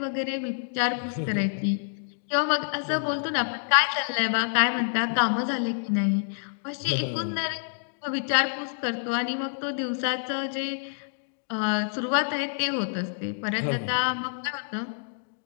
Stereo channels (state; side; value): silent; right; digital silence